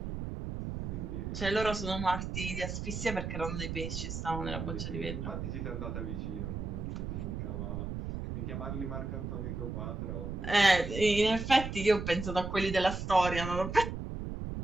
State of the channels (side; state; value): right; noise; rumble, 5 dB below the sound